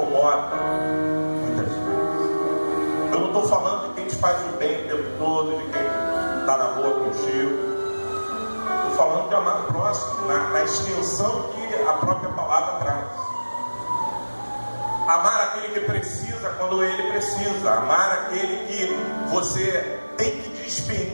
muitas vezes. Eu não estou falando de quem te faz o bem o tempo todo, de quem está na rua contigo. Estou falando de amar o próximo na extensão que a própria palavra traz. Amar aquele que precisa quando ele precisa. Amar aquele que você tem que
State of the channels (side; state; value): both; inverted; correlation -1.00